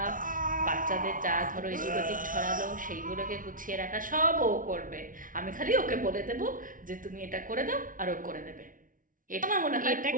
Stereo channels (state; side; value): late; left; 0.39 ms